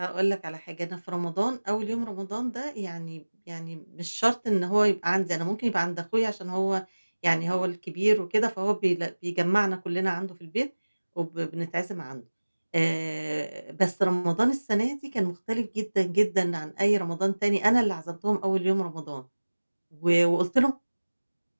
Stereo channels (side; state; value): both; inverted; correlation -1.00